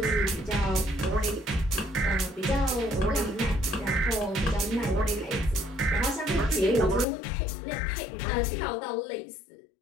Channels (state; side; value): drops out; right; at 7.1 s